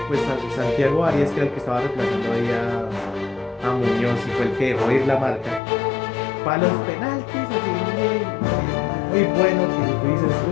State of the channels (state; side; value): drops out; right; at 5.6 s